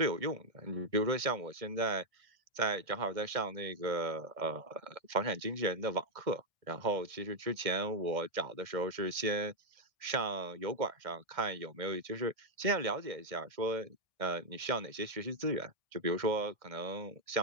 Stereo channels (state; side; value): late; left; 1.6 ms